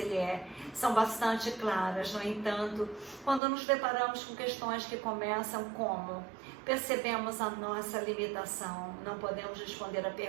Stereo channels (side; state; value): left; drops out; at 3.4 s